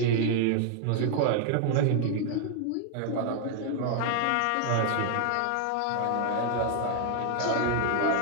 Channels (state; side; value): different; both; correlation 0.00